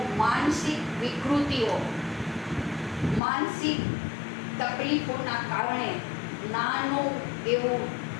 માનસિક વિકૃતિઓ, માનસિક તકલીફોના કારણે નાનું એવું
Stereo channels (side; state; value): right; drops out; at 3.2 s